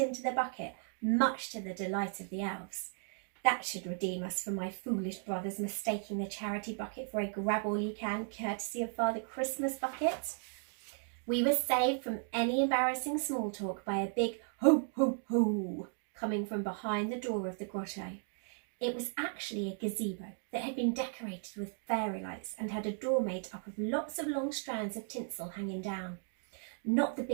the bucket, much to the delight of the elves. That should redeem us for my foolish brothers mistaking the charity bucket for a grab-all-you-can courtesy of Father Christmas bucket. We were saved from any embarrassing small talk by a big "ho, ho, ho" coming from behind the door of the grotto. It was actually a gazebo that had been decorated with fairy lights and had a door made up of lots of long strands of tinsel hanging down. Not the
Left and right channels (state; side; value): silent; left; 54 dB below the other